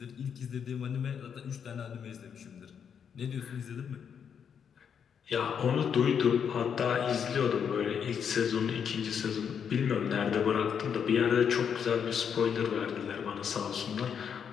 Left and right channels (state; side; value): quieter; right; 7.5 dB